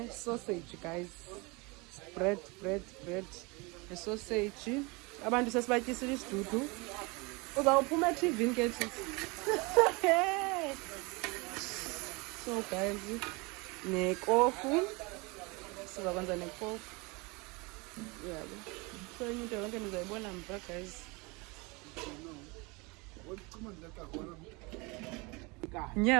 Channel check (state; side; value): quieter; left; 27.2 dB